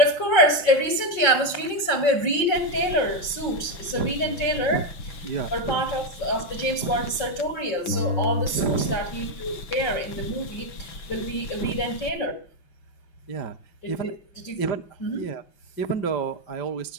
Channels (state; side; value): late; right; 5.5 ms